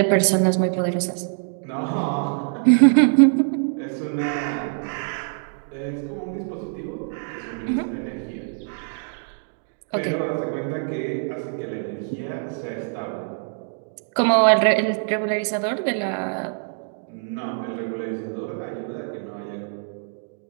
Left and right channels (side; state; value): left; silent; digital silence